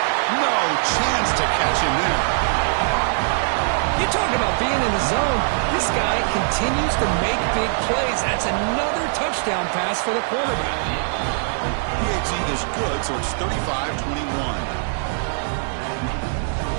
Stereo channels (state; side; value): silent; left; digital silence